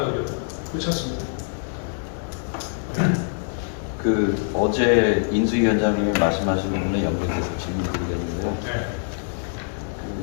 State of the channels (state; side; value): silent; right; digital silence